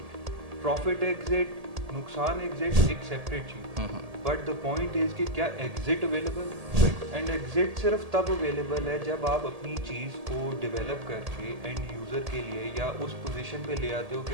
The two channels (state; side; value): late; left; 1.8 ms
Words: प्रॉफिट एग्जिट, नुकसान एग्जिट एक separate cheese, but the point is कि क्या एग्जिट अवेलेबल। एंड एग्जिट सिर्फ तब अवेलेबल है जब आप अपनी चीज़ को डेवलप करके एंड यूज़र के लिए या उस पोजीशन पे ले आते हो कि